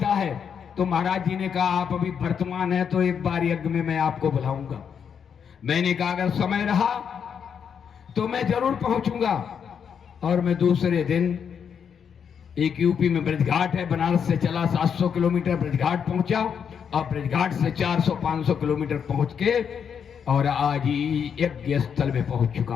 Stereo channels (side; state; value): right; quieter; 7.3 dB